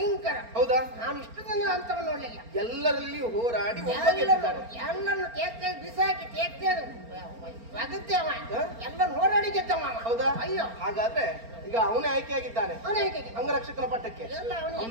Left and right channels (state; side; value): late; left; 4.3 ms